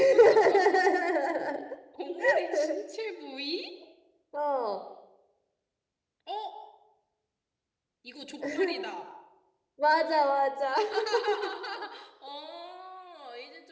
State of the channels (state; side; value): identical; both; correlation 1.00